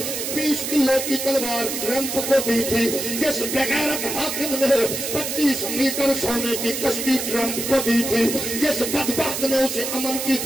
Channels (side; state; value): right; noise; hiss, 4 dB below the sound